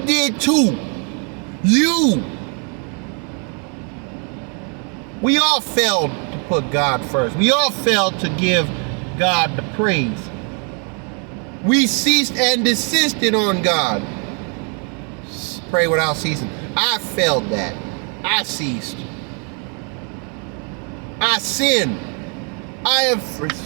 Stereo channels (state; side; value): quieter; left; 39.2 dB